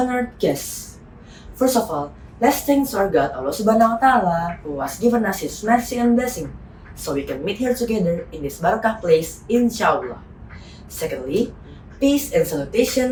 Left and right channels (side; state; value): both; identical; correlation 1.00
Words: guests. First of all, let's thank our God Allah Subhanahu wa Ta'ala who has given us His mercy and blessing so we can meet here together in this barakah place, inshallah. Secondly, peace and